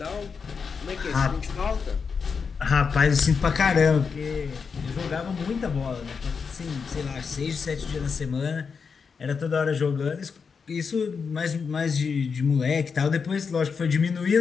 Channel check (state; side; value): quieter; right; 5.7 dB